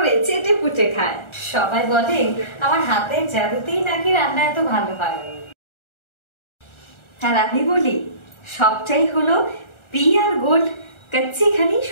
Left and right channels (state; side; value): late; right; 1.4 ms